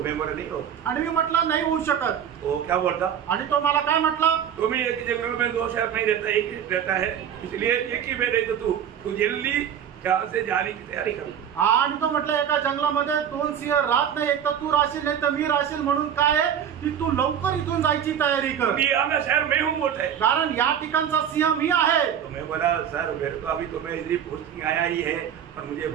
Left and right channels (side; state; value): left; quieter; 8.9 dB